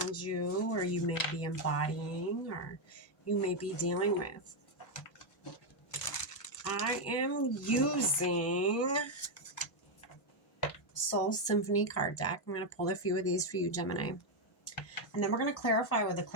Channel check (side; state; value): both; normal; correlation 0.03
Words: you, or you may be embodying, or you may be dealing with. I am using Soul Symphony card deck. I'm going to pull a few of these for you, Gemini. And then we're going to clarify with the